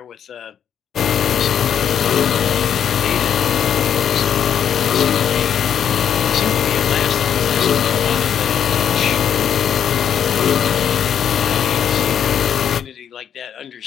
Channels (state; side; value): quieter; right; 8.7 dB